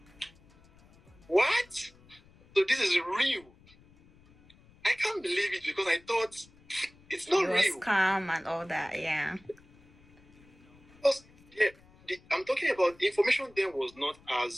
What? So this is real. I can't believe it because I thought it's not real. It was calm and all that, yeah. Because, I'm talking about the information then was not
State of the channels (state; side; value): noise; left; rumble, 27 dB below the sound